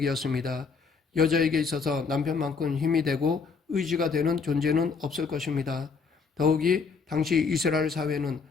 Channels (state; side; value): quieter; right; 5.1 dB